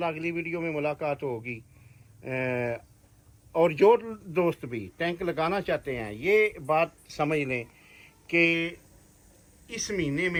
अगली वीडियो में मुलाकात होगी। और जो दोस्त भी टैंक लगाना चाहते हैं, ये बात समझ लें कि इस महीने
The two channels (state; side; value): identical; both; correlation 1.00